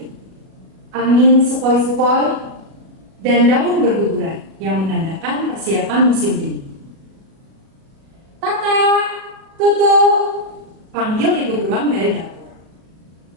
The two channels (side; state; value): left; late; 37 ms